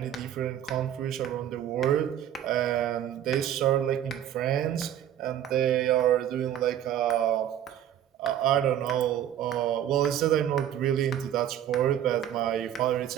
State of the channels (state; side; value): quieter; left; 10.6 dB